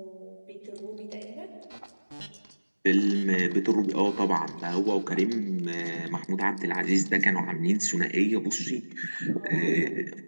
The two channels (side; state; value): both; inverted; correlation -1.00